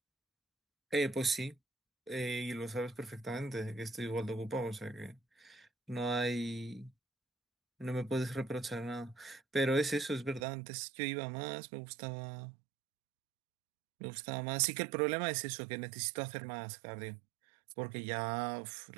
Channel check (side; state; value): left; drops out; at 10.5 s